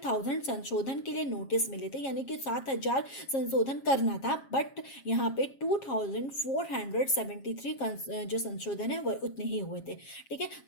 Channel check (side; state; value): right; late; 7.4 ms